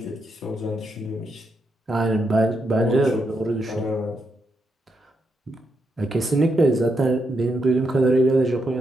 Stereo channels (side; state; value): both; normal; correlation 0.82